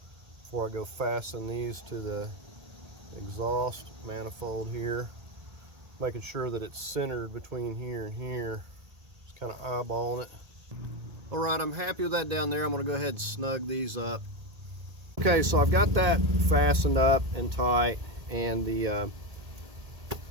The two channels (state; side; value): late; left; 1.8 ms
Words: before I go fasten these to the exhaust manifold here. Making sure that it's centered between here and here. Just kind of eyeballing it. All right, I'm happy with that down there. I'm going to go ahead and snug these up. Okay, so I've got that fastened up and tight, and the